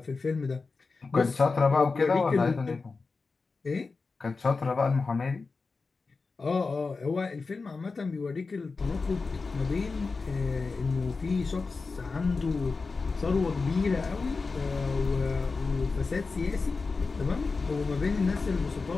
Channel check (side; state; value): right; quieter; 4.2 dB